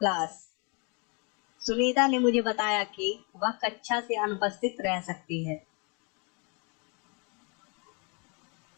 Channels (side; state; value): right; quieter; 33.5 dB